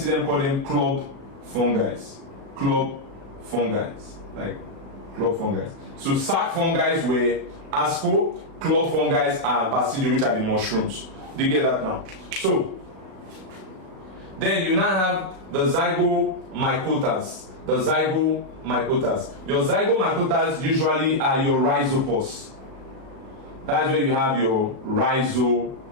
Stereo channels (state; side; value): late; left; 37 ms